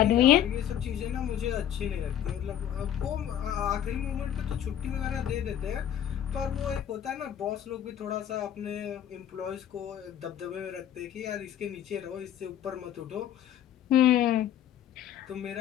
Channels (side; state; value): right; quieter; 10.5 dB